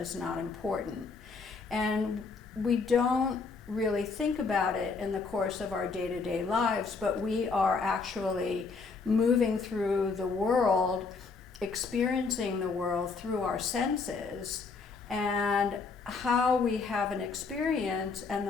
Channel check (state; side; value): quieter; right; 4.6 dB